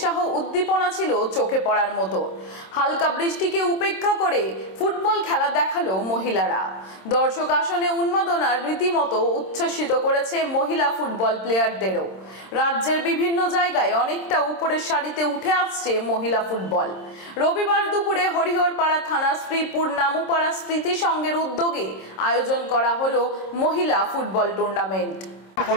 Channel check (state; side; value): late; right; 26 ms